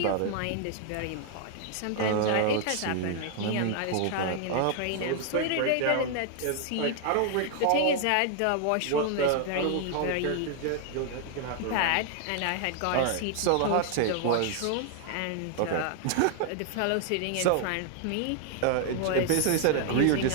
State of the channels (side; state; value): both; different; correlation 0.00